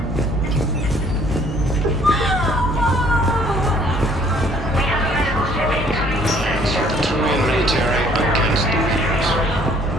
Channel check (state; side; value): normal; both; correlation 0.59